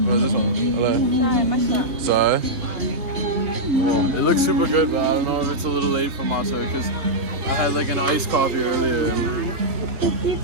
Or this one? I like. Sorry. It looks super good, but I don't know if it's a little late for matcha because I had like an iced coffee earlier.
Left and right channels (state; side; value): late; left; 3.5 ms